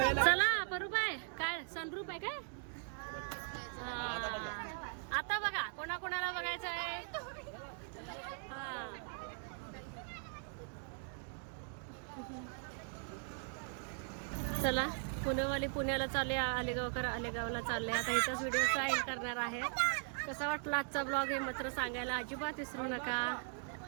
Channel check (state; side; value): silent; left; 51 dB below the other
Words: चला परूबाई, काय सनरूप आहे काय? आता बघा कोणाकोणाला बघायचं आहे. चला पुणेवाली पुण्याला चालले, आलेगावकर आलेगावला चालले. आता इथंच व्हिडिओचा एंड करणार आहे. कसा वाटला आजचा ब्लॉग हे मात्र सांगायला अजिबात विसरू नका.